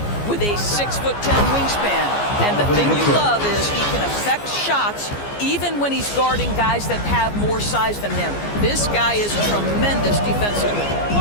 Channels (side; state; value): right; late; 14 ms